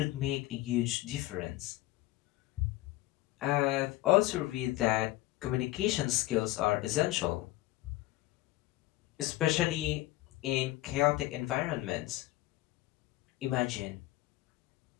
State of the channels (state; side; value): quieter; right; 17.4 dB